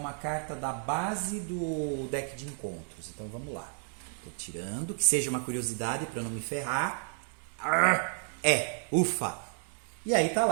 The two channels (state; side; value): silent; left; 57 dB below the other